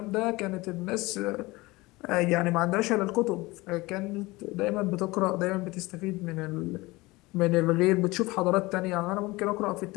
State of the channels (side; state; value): right; quieter; 21.6 dB